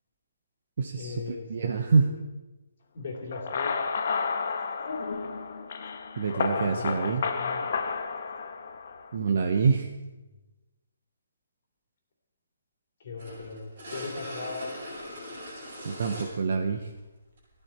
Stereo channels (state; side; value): inverted; both; correlation -0.78